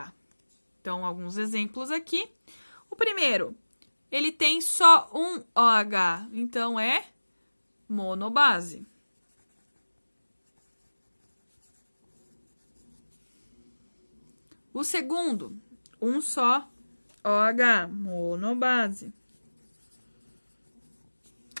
Então, alguns exemplos aqui. O primeiro, ele tem só um OH, então é monobase. O segundo, um só OH, monobase.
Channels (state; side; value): inverted; both; correlation -1.00